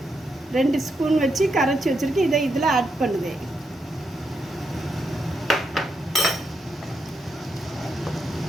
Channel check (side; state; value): both; normal; correlation 0.82